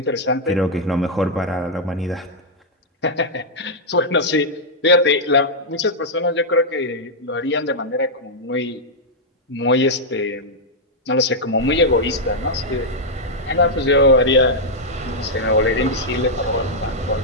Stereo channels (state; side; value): normal; both; correlation -0.05